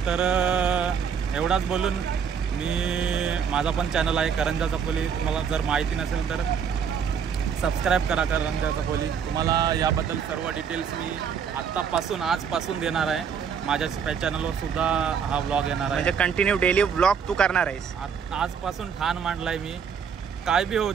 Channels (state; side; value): quieter; left; 7.1 dB